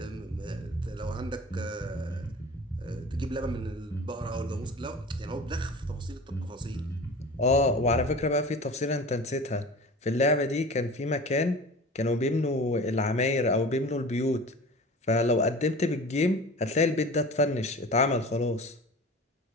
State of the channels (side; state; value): both; normal; correlation 0.37